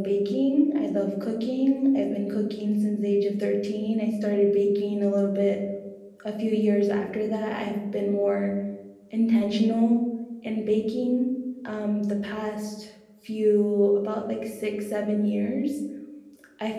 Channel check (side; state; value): both; identical; correlation 1.00